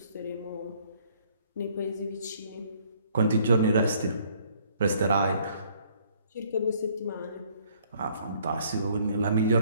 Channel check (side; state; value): both; inverted; correlation -0.62